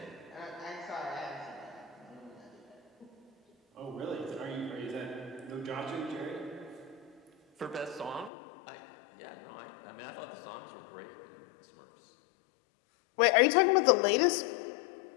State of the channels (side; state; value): right; drops out; at 8.3 s